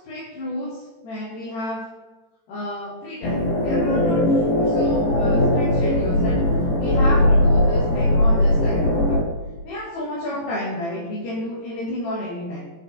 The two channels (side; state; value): right; late; 18 ms